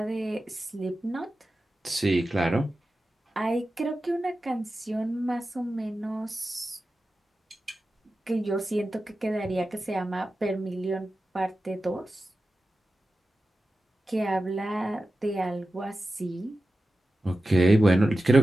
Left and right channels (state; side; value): normal; both; correlation 0.93